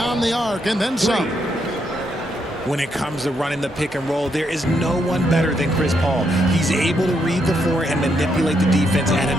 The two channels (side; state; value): both; normal; correlation 0.77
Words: the arc, and then some. When it comes to running the pick and roll, there is no one better than Chris Paul. He's able to read the floor and manipulate the defense at